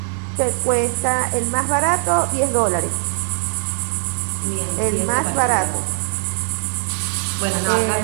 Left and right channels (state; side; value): silent; left; 65 dB below the other